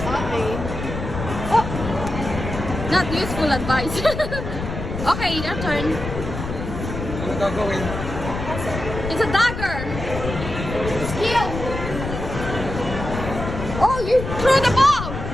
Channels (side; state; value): left; noise; rumble, 6 dB below the sound